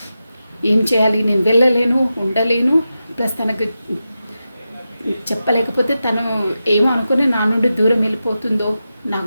ఏం చేయాలి, నేను వెళ్ళలేను, ఉండలేను. ప్లస్ తనకు చెప్పలేకపోతే తను ఏమో అనుకుని నా నుండి దూరం వెళ్ళిపోతుందో,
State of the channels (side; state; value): both; inverted; correlation -0.91